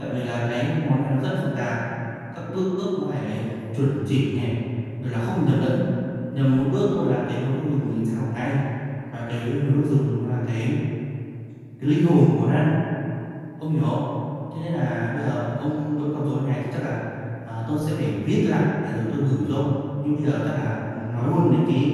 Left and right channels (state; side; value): identical; both; correlation 1.00